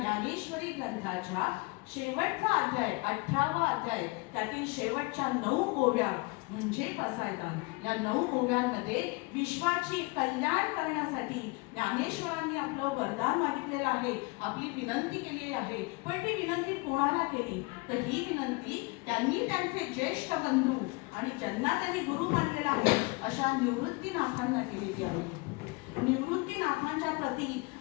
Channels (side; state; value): right; quieter; 27.1 dB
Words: ग्रंथाच्या शेवटचा अध्याय 18वा अध्याय, त्यातील शेवटच्या 9 ओव्या म्हणजे पसायदान. या 9 ओव्यांमध्ये विश्वाची कल्याण करण्यासाठी ज्ञानेश्वरांनी आपलं वरदान मागितलेलं आहे, आपली विनंती केलेली आहे. पण ती विनंती कोणाला केली तर ही विनंती त्यांनी त्यांचे ज्येष्ठ बंधू आणि ज्यांना त्यांनी गुरु मानलेला आहे अशा निवृत्तीनाथांना केलेली आहे. निवृत्तीनाथांच्या प्रती